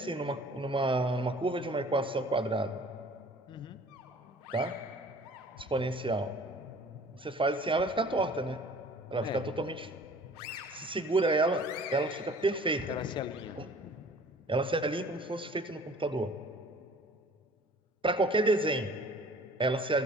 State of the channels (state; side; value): normal; both; correlation 0.50